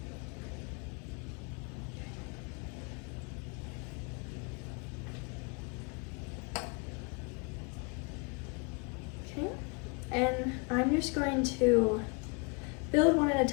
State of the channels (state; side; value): quieter; right; 32.3 dB